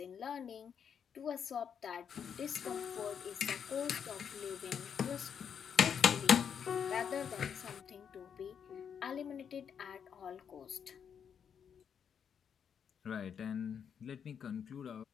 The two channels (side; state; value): right; quieter; 7.6 dB